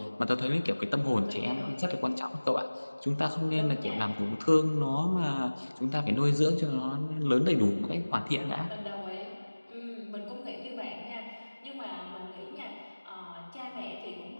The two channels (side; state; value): both; inverted; correlation -1.00